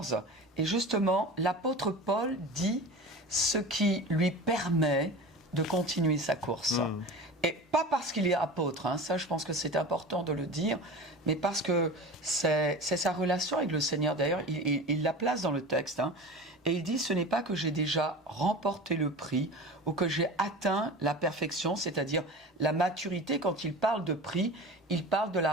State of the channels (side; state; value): both; normal; correlation 0.33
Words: Et justement, l'apôtre Paul dit ce qui lui permet de continuer sa course. Et pas parce qu'il est apôtre, ça je pense que c'est important de le dire, mais parce que c'est sa relation avec le Seigneur. D'ailleurs, il la place dans le texte. Et il dit, ce n'est pas que j'ai déjà remporté le prix ou que j'ai atteint la perfection, c'est-à-dire la maturité. Quand il parle de prix, il parle de la